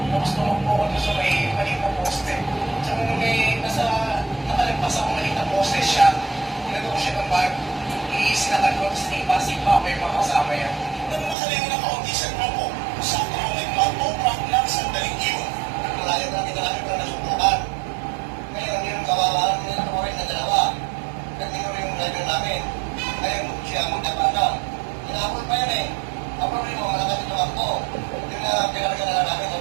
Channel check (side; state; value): left; drops out; at 11.4 s